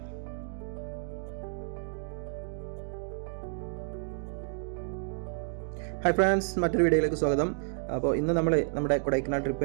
ഹായ് ഫ്രണ്ട്സ്, മറ്റൊരു വീഡിയോയിലേക്ക് സ്വാഗതം. അപ്പോൾ ഇന്ന് നമ്മൾ നമ്മുടെ കൊടൈക്കനാൽ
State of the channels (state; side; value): silent; left; digital silence